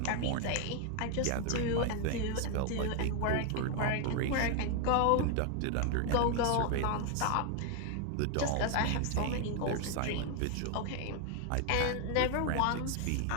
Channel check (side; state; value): both; different; correlation 0.01